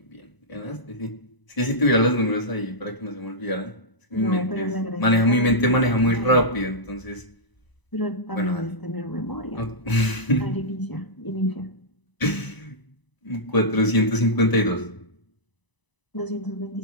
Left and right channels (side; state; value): right; late; 1.0 ms